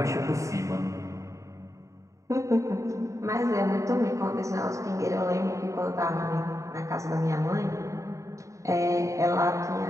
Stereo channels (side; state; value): left; late; 0.15 ms